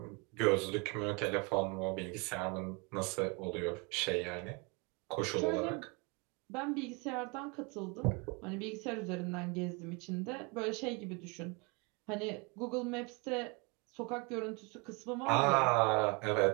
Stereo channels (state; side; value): quieter; left; 29.4 dB